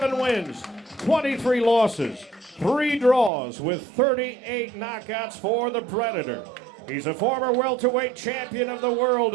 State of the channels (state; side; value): drops out; left; at 3.3 s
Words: wins, 23 losses, 3 draws with 38 knockouts for the Predator. He's a former welterweight champion of the world